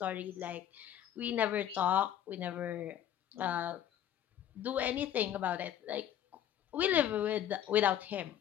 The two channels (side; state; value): right; quieter; 10.6 dB